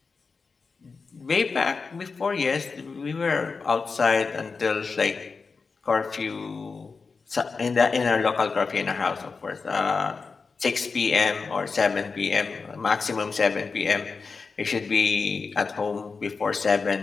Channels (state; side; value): quieter; right; 4.7 dB